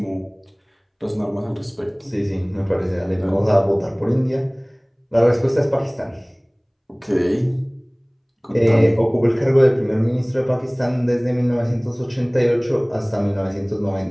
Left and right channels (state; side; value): identical; both; correlation 1.00